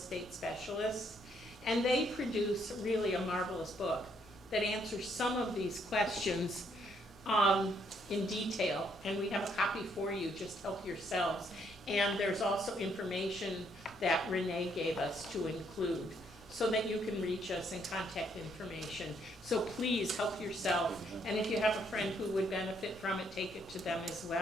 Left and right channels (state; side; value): normal; both; correlation 0.71